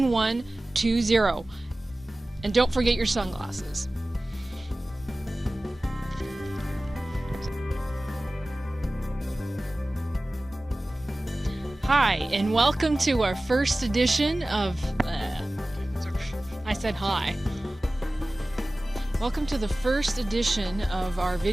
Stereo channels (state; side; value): normal; both; correlation 0.97